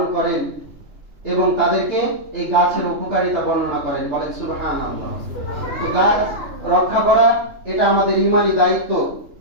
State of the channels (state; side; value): late; left; 3.4 ms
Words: করেন এবং তাদেরকে এই গাছের উপকারিতা বর্ণনা করেন, বলেন সুবহানাল্লাহ। তো গাছ রক্ষা করা এটা আমাদের ঈমানি দায়িত্ব।